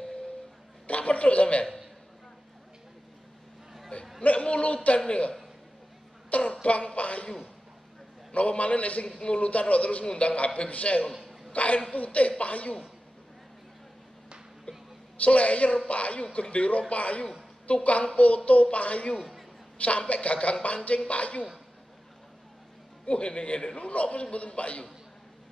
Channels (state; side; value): normal; both; correlation 0.93